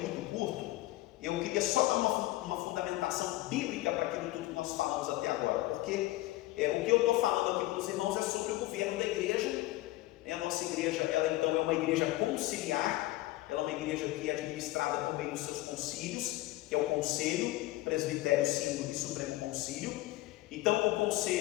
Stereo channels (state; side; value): quieter; right; 17.8 dB